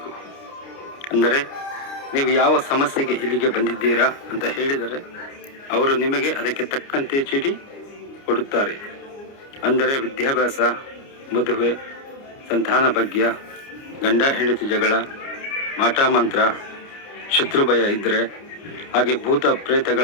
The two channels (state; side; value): late; right; 29 ms